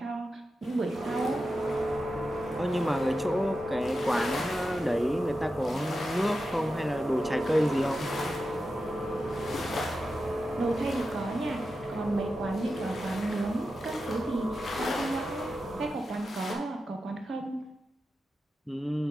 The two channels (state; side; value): normal; both; correlation 0.90